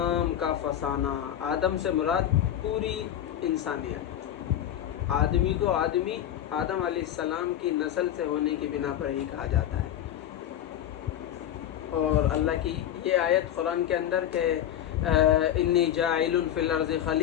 کا فسانہ۔ آدم سے مراد پوری انسانیت، آدمی کو آدمی آدم علیہ السلام کی نسل سے ہونے کی بنا پر ہی کہا جاتا ہے۔ اور اللہ کی یہ آیت قرآن کے اندر کہ انی جاعل فی الارض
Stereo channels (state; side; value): quieter; right; 11.0 dB